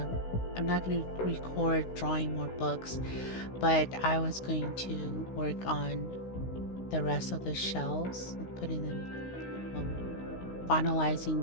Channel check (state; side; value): late; right; 16 ms